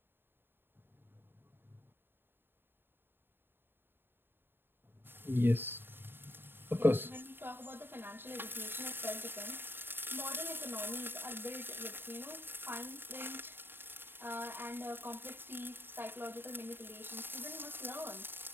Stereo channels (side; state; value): left; late; 0.10 ms